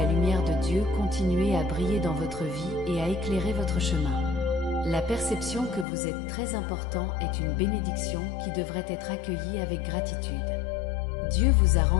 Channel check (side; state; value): right; drops out; at 5.9 s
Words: lumière de Dieu continuer à briller dans votre vie et à éclairer votre chemin. La perception que vous êtes très important est une bénédiction qui devrait être accueillie avec gratitude. Dieu vous a